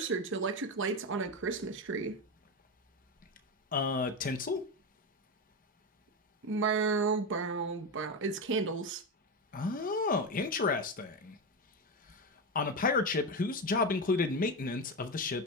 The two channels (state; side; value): normal; both; correlation 0.15